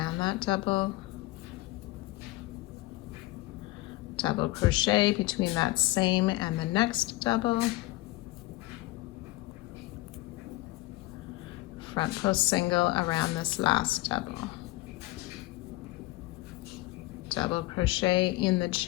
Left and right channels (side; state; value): right; quieter; 19.0 dB